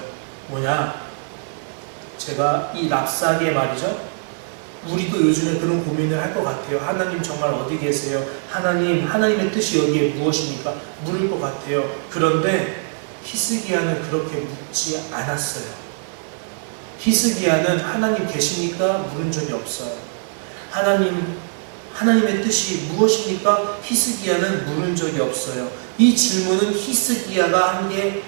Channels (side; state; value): left; silent; digital silence